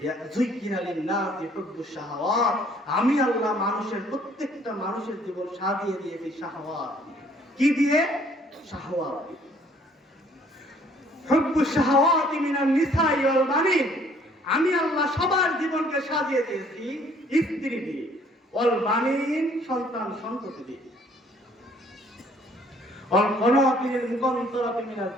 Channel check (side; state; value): both; normal; correlation 0.60